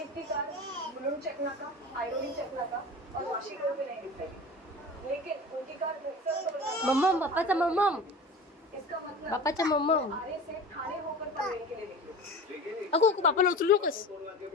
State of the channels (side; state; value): both; normal; correlation 0.35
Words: की कार मुलुंड चेक नाका आयरोली चेक नाका और वाशी रोड पे नहीं दिखाई लेकिन उनकी कार मम्मम बापाचा मम्मम इसका मतलब बापाचा मम्मम आरे से थाने होकर पनवेल के लिए निकली अगो बापाला उचलू नकोस